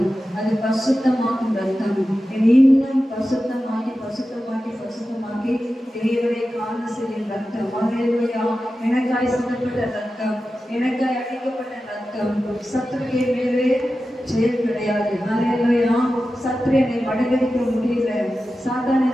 அது பசுத்தமாக்கும் ரத்தம், என்னை இன்னும் பசுத்தமாக்கி பசுத்தமாக்கி பசுத்தமாக்கி தேவனை காண செய்யும் ரத்தம். ஹalleluya. எனக்காய் சிந்தப்பட்ட ரத்தம், எனக்காய் அடிக்கப்பட்ட ரத்தம். சத்துருவிய மேலே ஜெயம் கிடையாது. ஹalleluya. சத்துரு என்னை மடங்கடிக்க முடியல, சாத்தான்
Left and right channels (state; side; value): normal; both; correlation 0.93